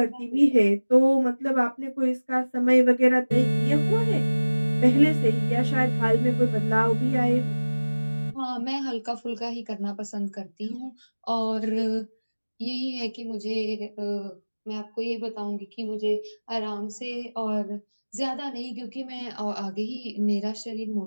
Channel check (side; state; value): both; inverted; correlation -1.00